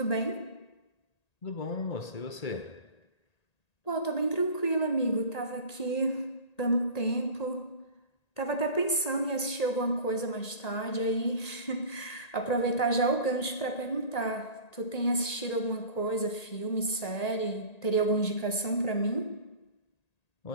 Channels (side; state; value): right; late; 1.8 ms